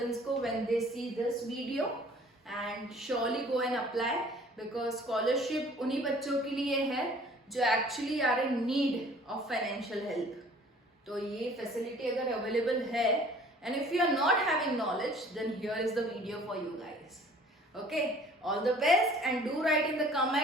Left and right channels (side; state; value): both; normal; correlation 0.52